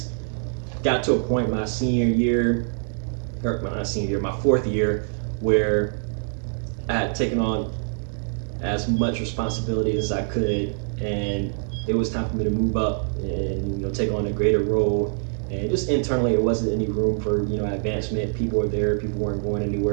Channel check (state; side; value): silent; left; 62 dB below the other